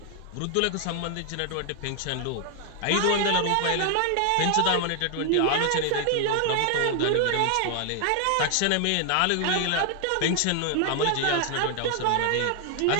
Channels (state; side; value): different; both; correlation 0.00